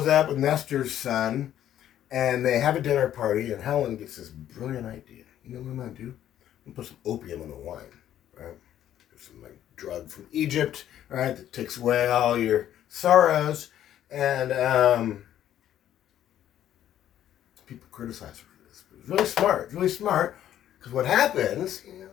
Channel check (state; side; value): quieter; right; 11.4 dB